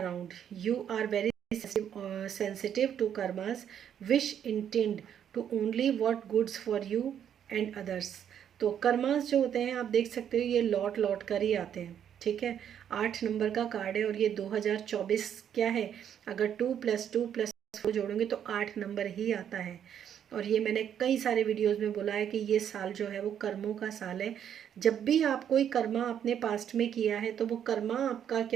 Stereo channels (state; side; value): quieter; left; 9.2 dB